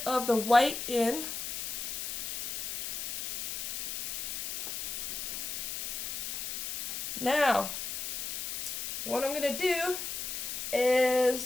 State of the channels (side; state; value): left; noise; hiss, 4 dB below the sound